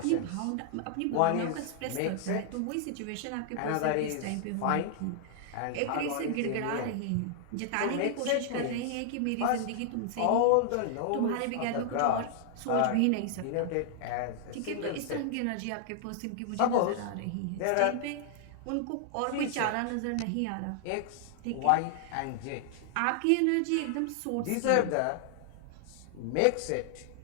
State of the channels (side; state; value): both; different; correlation 0.00